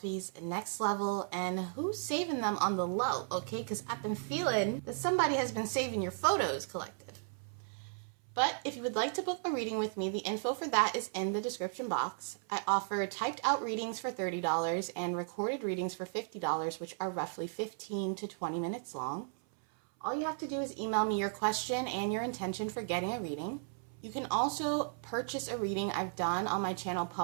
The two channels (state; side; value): silent; left; 54 dB below the other